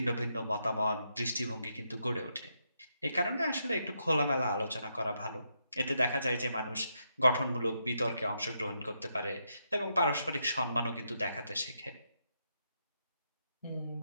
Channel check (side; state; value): both; inverted; correlation -0.81